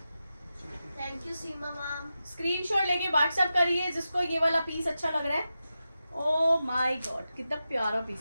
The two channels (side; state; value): both; inverted; correlation -0.91